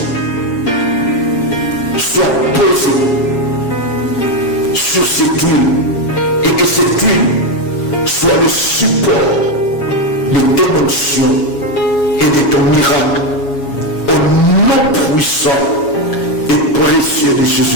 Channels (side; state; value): right; late; 7.2 ms